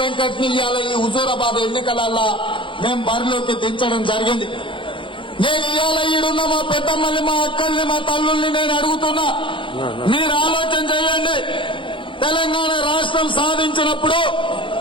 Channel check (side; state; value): right; late; 0.25 ms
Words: ఇవాళ ఈ హుజూరాబాద్ ఎన్నికలల్లా మేము బరిలోకి దించడం జరిగింది. నేను ఇవాళ ఈడున్న మా పెద్దమ్మల్ని, మా అక్కల్ని, మా తల్లుల్ని నేను అడుగుతున్నా, మీరు ఆలోచన చేయండి. తెలంగాణ రాష్ట్రం సాధించినప్పుడు